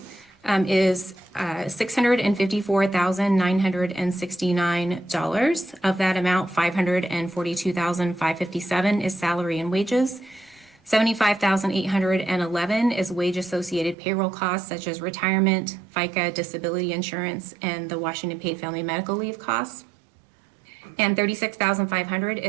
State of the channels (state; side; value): drops out; left; at 14.0 s